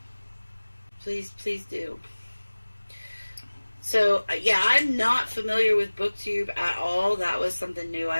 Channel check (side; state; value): both; inverted; correlation -1.00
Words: Please do. So, yeah, I'm not familiar with BookTube at all. That was something new